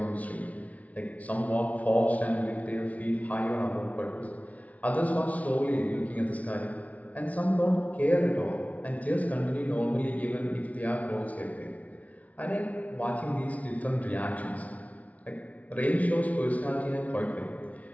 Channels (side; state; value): right; late; 0.069 ms